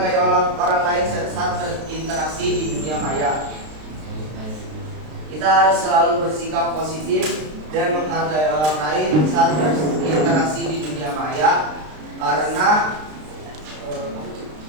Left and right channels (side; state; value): left; late; 32 ms